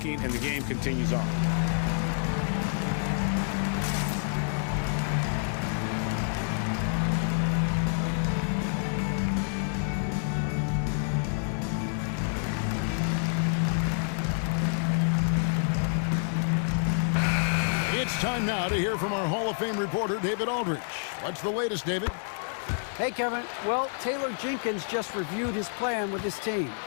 and the game continues on. It's time now to hear from our Hall of Fame reporter, David Aldridge. What's the latest, David? Hey, Kevin. Well, Taylor Jenkins just reviewed his plan with his team.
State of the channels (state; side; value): silent; right; digital silence